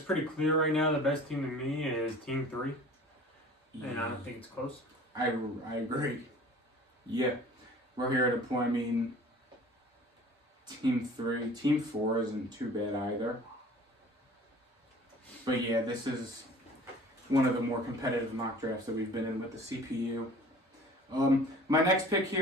pretty clear right now. The best team to me is Team 3. Yeah. And I don't think it's close. I agree. Yeah. We're here at a point, I mean, Team 3. Team 4 isn't too bad either. But yeah, this is one of the more competitive mock drafts that we've been in with the CPU. My next pick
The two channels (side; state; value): both; normal; correlation 0.46